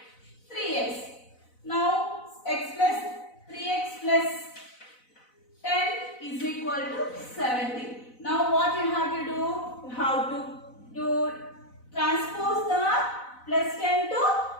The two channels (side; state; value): right; late; 4.0 ms